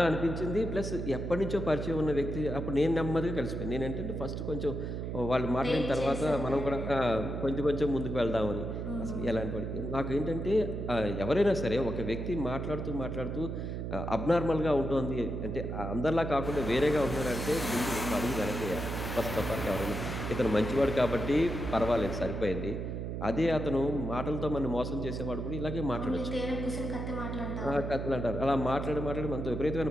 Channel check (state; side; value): noise; right; hum, 4 dB below the sound